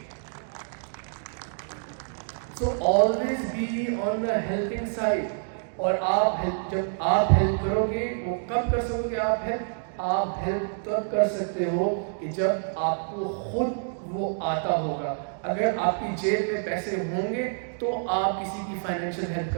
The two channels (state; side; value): silent; left; digital silence